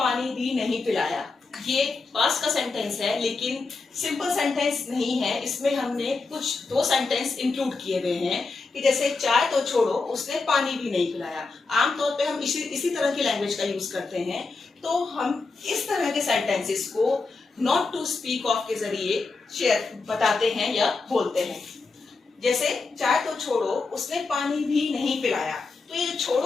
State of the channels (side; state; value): right; quieter; 4.0 dB